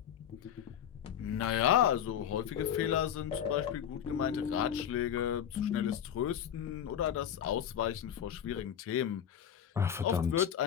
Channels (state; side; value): quieter; right; 9.3 dB